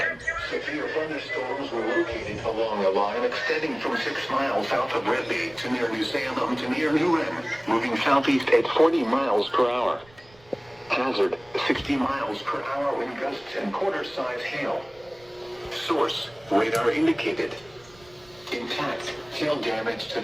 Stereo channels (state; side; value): noise; right; rumble, 27 dB below the sound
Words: severe thunderstorms were located along a line extending from 6 miles south of Red Bay to near New Salem to near New Wren, moving southeast at 40 miles per hour. Hazard, 60 miles per hour wind gusts and quarter-size hail. Source, radar indicated. Intact, hail damage to